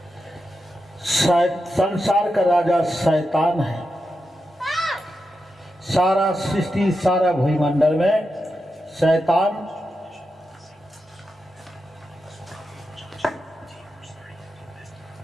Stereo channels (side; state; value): both; normal; correlation 0.88